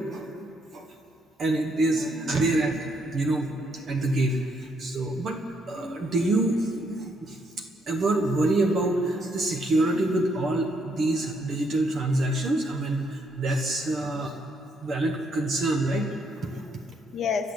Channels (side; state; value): both; normal; correlation 0.73